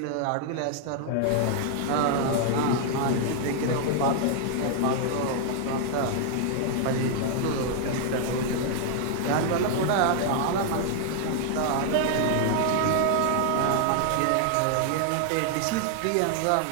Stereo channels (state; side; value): different; both; correlation 0.00